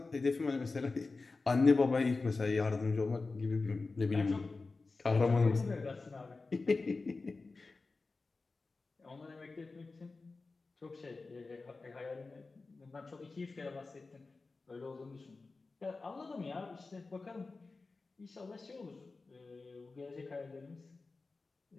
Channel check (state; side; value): quieter; right; 3.8 dB